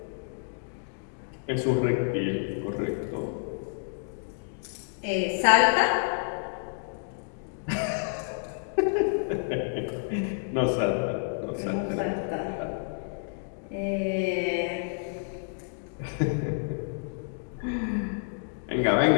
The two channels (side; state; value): right; silent; digital silence